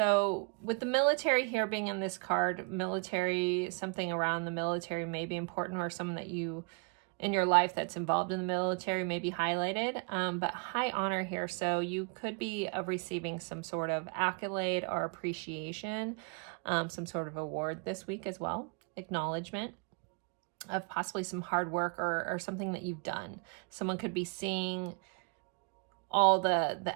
with the military here being in this card, military, something around the military may be important, or someone that you in your life that's involved in the military may be highlighted. But high honor here, so you could be receiving some sort of accolade or appreciation, some sort of award this week as well, acknowledgement of possibly some hard work or something that you've done. Someone could be seeing all the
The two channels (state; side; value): quieter; left; 37.2 dB